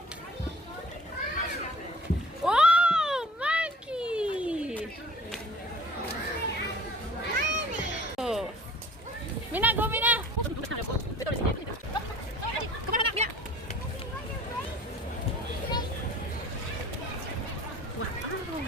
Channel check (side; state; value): both; normal; correlation 0.48